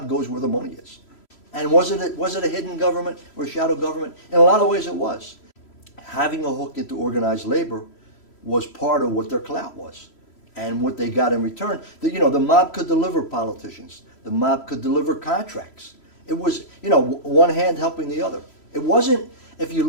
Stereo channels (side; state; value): right; late; 3.0 ms